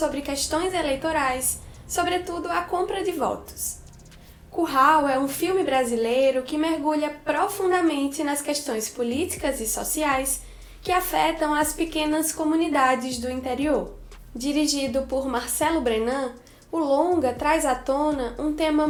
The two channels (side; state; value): both; identical; correlation 1.00